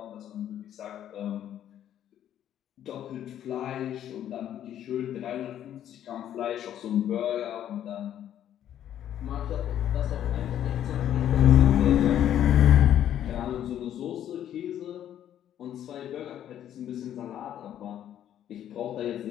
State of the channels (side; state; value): right; quieter; 10.8 dB